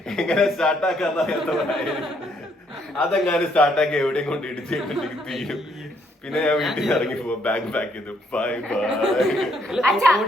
എങ്ങനെ സ്റ്റാർട്ടാക്കാന്ന് അതെങ്ങാനും സ്റ്റാർട്ടാക്കി എവിടെയും കൊണ്ട് ഇടിച്ചിട്ടുണ്ടെങ്കിൽ തീരും. പിന്നെ ഞാൻ വീട്ടിൽ ഇറങ്ങി പോവാം, ബാഗ് പാക്ക് ചെയ്തു, ബൈ ബൈ.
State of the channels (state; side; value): normal; both; correlation 0.70